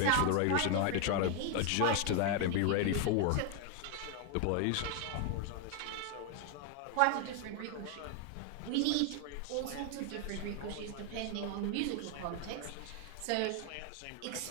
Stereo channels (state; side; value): different; both; correlation 0.01